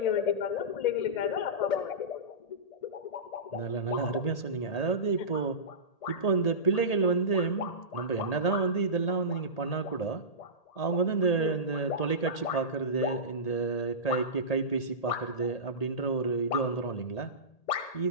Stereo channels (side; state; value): right; late; 1.8 ms